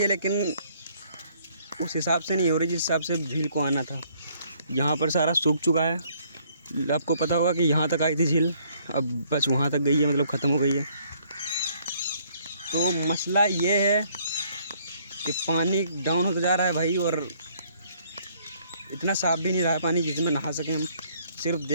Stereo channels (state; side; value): inverted; both; correlation -0.64